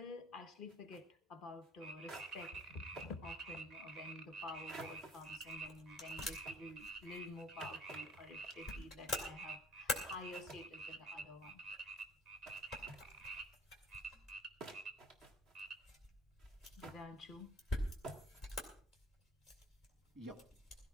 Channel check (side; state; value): both; normal; correlation 0.52